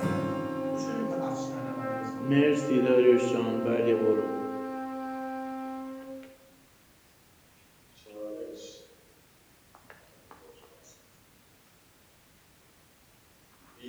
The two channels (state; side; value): identical; both; correlation 1.00